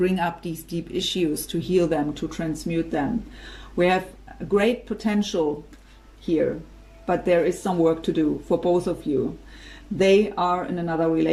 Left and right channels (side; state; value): both; identical; correlation 1.00